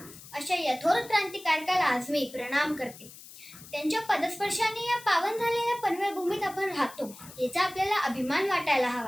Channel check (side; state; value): left; noise; hiss, 18 dB below the sound